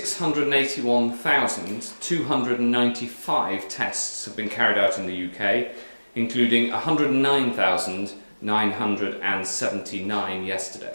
tests have been carried out in the UK, including 109,979 yesterday.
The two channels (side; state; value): both; inverted; correlation -1.00